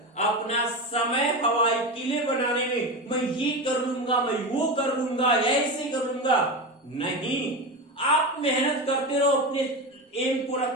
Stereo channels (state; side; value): normal; both; correlation 0.21